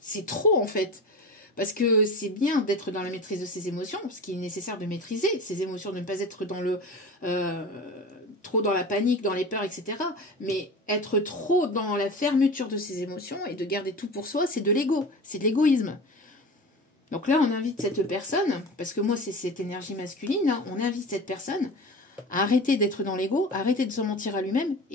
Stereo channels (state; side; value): normal; both; correlation 0.32